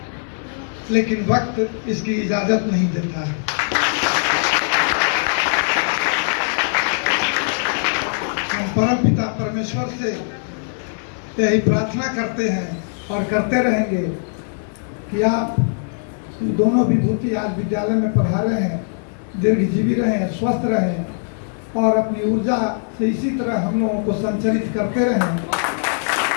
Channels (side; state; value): right; silent; digital silence